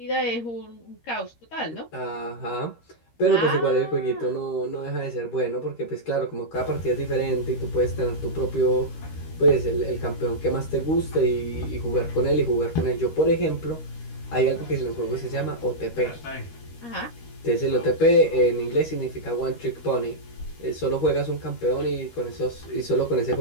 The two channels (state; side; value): late; right; 13 ms